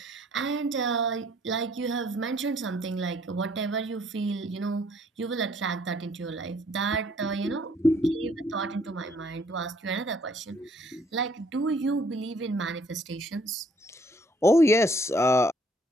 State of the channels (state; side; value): normal; both; correlation 0.63